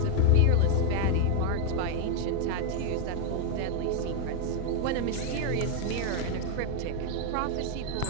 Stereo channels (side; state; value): both; different; correlation 0.01